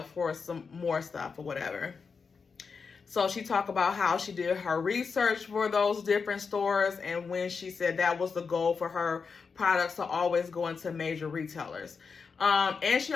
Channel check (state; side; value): quieter; right; 5.3 dB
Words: for some more stuff or whatever. So she talked about how she did her research for those different stores, and when she said that was the goal for her products to always go into major retailers. And she